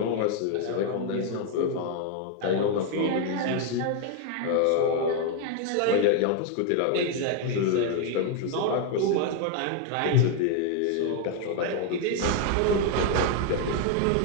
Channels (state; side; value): different; both; correlation 0.00